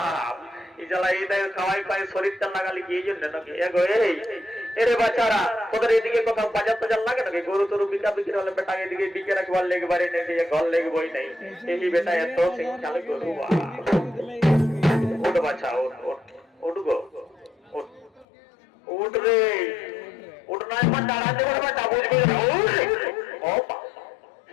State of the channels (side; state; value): right; drops out; at 18.2 s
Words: এই জ্বালা এই দেখ খাওয়াই পায় শরীরটা লাগালি কি এই জন্য নাকি এগো এই এরে বাচ্চারা তোদের এদিকে কোথাও বাজার টাজার লাগে নাকি গরু তরু বিকা বিক্রি হলে বেটা এদিকে বিকে রাখবার লেগবারে নেই ঘর লেগবই নাই এই বেটা এত শিক্ষালে গরু উঠ বাচ্চা উঠ উঠ উঠ গো উঠ উঠ রে উঠ নয় মা দাঁড়া দেবার বেটা বুঝবি ও